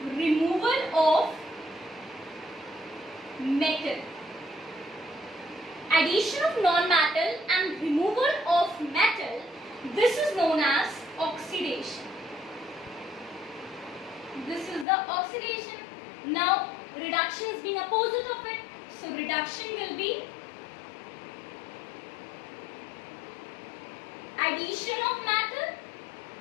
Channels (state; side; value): drops out; right; at 14.9 s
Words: removal of metal. Addition of non-metal and removal of metal, this is known as oxidation. This is the oxidation. Now reduction is being opposite of it. So reduction will be addition of metal,